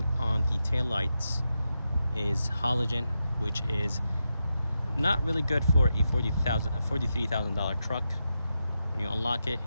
on the taillights is halogen, which is not really good for a $43,000 truck. When you unlock it,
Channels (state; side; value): inverted; both; correlation -0.87